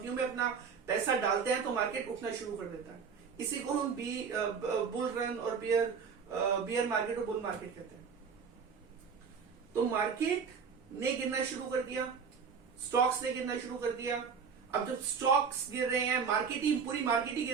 में अपना पैसा डालते हैं तो मार्केट उठना शुरू कर देता है। इसी को हम बुल रन और बियर मार्केट और बुल मार्केट कहते हैं। तो मार्केट ने गिरना शुरू कर दिया, स्टॉक्स ने गिरना शुरू कर दिया। अब जब स्टॉक्स गिर रहे हैं, मार्केट ही पूरी मार्केट ही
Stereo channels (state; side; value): quieter; left; 6.1 dB